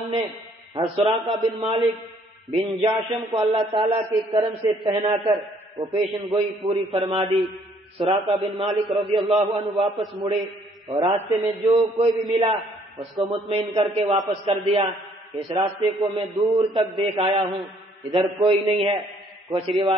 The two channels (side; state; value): both; normal; correlation 0.63